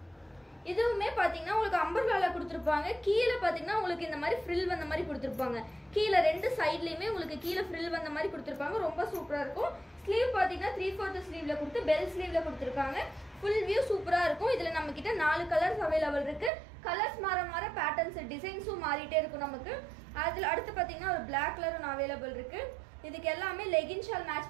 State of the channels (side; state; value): left; drops out; at 16.5 s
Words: இதுவுமே பாத்தீங்கன்னா உங்களுக்கு அம்பர்லால கொடுத்துருப்பாங்க. கீழே பாத்தீங்கன்னா உங்களுக்கு இந்த மாதிரி ஃப்ரில் வந்த மாதிரி கொடுத்துருப்பாங்க. கீழே ரெண்டு சைட்லயுமே உங்களுக்கு கீழே ஃப்ரில் வந்த மாதிரி கொடுத்துருப்பாங்க. ரொம்ப சூப்பரா இருக்கும். ஸ்லீவ் பாத்தீங்கன்னா 3/4 ஸ்லீவ்ல கொடுத்து பெல் ஸ்லீவ்ல கொடுத்துருக்காங்க. ஃபுல் வியூ சூப்பரா இருக்கும். இதுல நம்ம கிட்ட 4 கலர்ஸ் அவைலபிள் இருக்கு. கலர்ஸ் மாற பேட்டர்ன்ஸ் டிசைன்ஸும் மாறிட்டே இருக்கும் நமக்கு. அதுல அடுத்து பாத்தீங்கன்னா ஒரு பிளாக் கலர் ஒன்று அவைலபிள் இருக்கு. இதுக்கு எல்லாமே லெகின் ஷால்